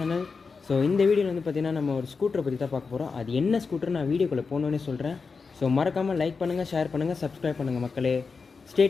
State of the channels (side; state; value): right; quieter; 4.8 dB